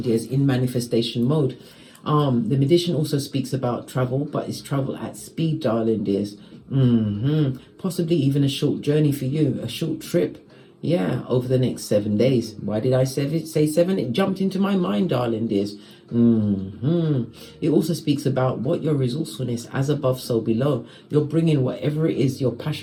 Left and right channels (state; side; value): identical; both; correlation 1.00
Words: dears, in manifestation mode. The magician also speaks about travel, but it's travel at speed, darling dears. Possibly even a short journey for you, a short trip. Yeah, over the next 7 days. Why did I say 7? It jumped into my mind, darling dears. It also speaks about what your resourcefulness, as above, so below. You're bringing whatever it is, your